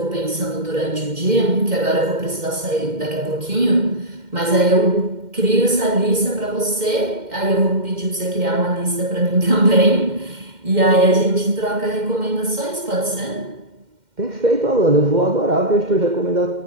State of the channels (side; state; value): left; late; 2.1 ms